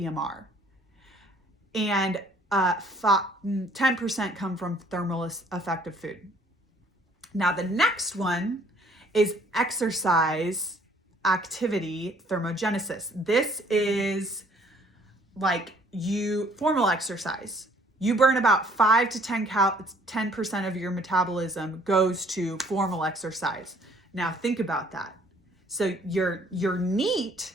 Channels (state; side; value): normal; both; correlation 0.60